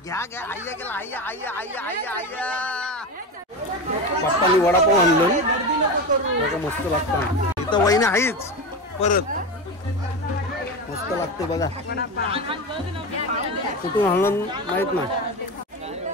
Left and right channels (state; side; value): normal; both; correlation 0.21